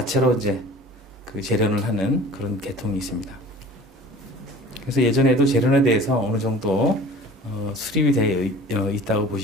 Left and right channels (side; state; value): both; normal; correlation 0.43